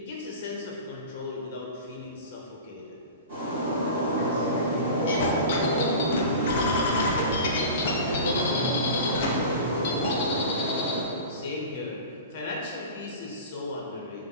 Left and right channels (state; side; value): inverted; both; correlation -0.34